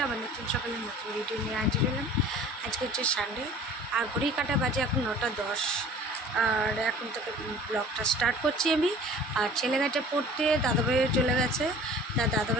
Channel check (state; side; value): normal; both; correlation 0.46